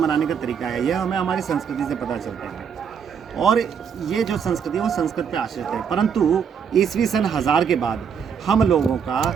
का तरीका है, यह हमें हमारी संस्कृति से पता चलता है, और ये जो संस्कृति है वो संस्कृत पे आश्रित है। परंतु ईस्वी सन 1000 के बाद हम लोगों का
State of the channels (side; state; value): left; quieter; 7.1 dB